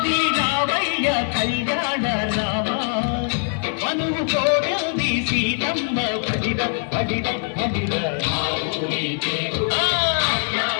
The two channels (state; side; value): silent; right; 64 dB below the other